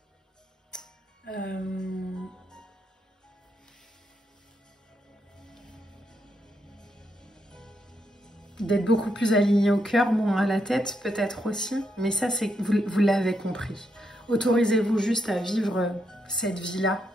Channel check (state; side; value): normal; both; correlation 0.80